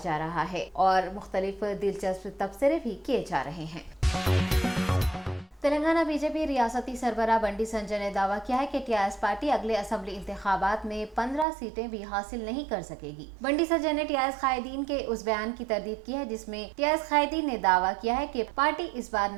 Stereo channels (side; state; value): left; drops out; at 11.5 s